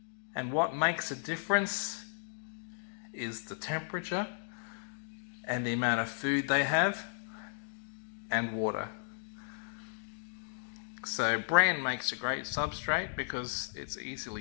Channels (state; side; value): silent; right; digital silence